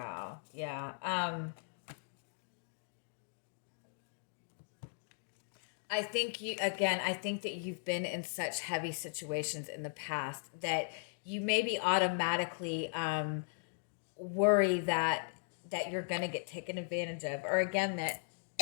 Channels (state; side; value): silent; right; digital silence